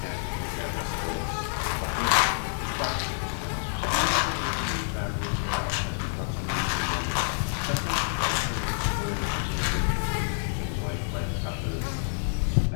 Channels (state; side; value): silent; right; digital silence